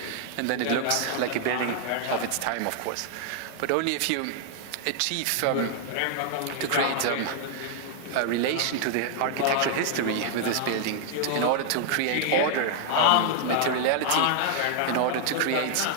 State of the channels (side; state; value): both; different; correlation -0.01